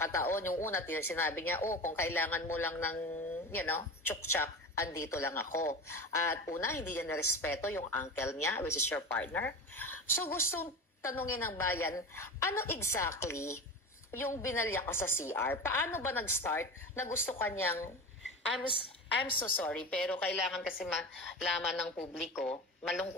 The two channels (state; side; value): normal; both; correlation 0.28